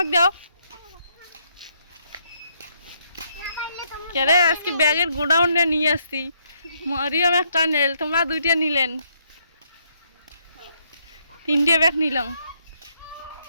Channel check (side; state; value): both; inverted; correlation -0.73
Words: দাও। কেরে আজকে ব্যাগের গোডাউনে নিয়ে আসছি, মরিয়ম একটা নেল, তোমরা 2টা নিলেন, 3টে ব্যাগ নিলাম।